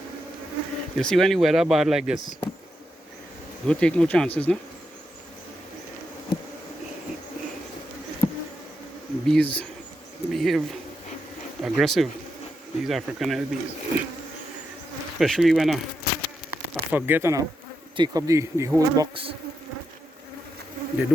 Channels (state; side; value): normal; both; correlation 0.84